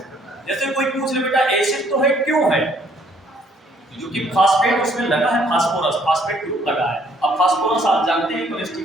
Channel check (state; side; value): normal; both; correlation 0.64